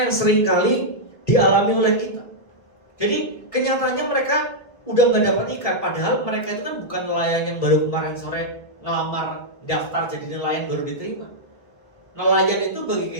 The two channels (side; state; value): right; late; 1.6 ms